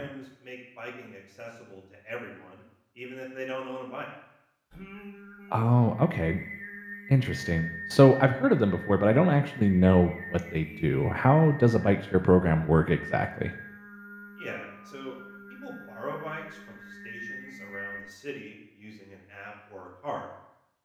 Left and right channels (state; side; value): identical; both; correlation 1.00